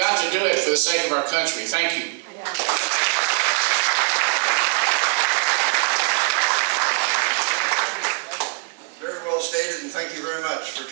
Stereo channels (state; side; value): quieter; left; 37.9 dB